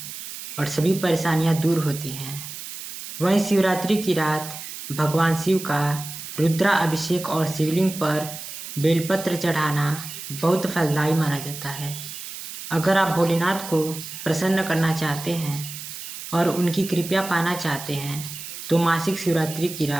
और सभी परेशानियां दूर होती हैं। वहीं शिवरात्रि की रात भगवान शिव का रुद्रा अभिषेक और शिवलिंग पर बेलपत्र चढ़ाना बहुत फलदायी माना जाता है। अगर आप भोलेनाथ को प्रसन्न करना चाहते हैं और उनकी कृपा पाना चाहते हैं तो मासिक शिवरात्रि की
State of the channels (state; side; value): noise; right; hiss, 10 dB below the sound